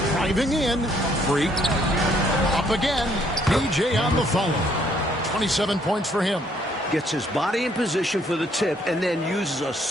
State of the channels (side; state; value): both; normal; correlation 0.66